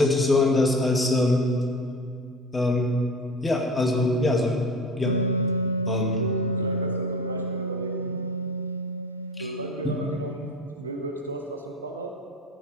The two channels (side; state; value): both; normal; correlation 0.36